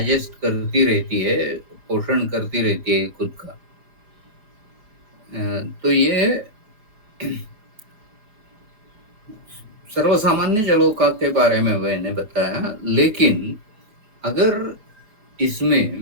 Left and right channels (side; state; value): left; late; 4.8 ms